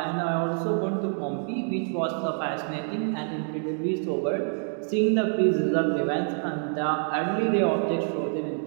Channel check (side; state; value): left; silent; 60 dB below the other